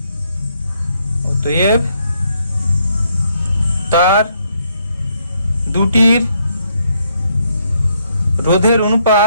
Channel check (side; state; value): both; inverted; correlation -0.74